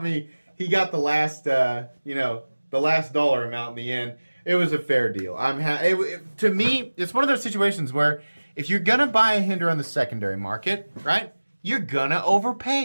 me. He got the last the last dollar amount in the end. It was a fair deal. To me, it's one of those situations where if you're gonna buy a Hinderer on the secondary market, right, you're gonna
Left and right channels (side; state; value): both; inverted; correlation -1.00